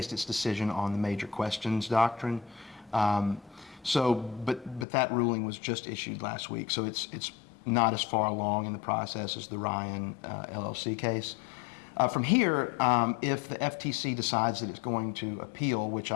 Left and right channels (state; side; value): drops out; right; at 4.9 s